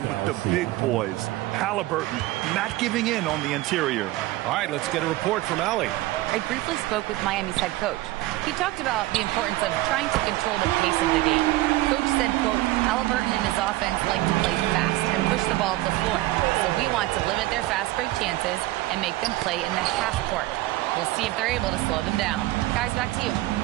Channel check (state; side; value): quieter; left; 17.8 dB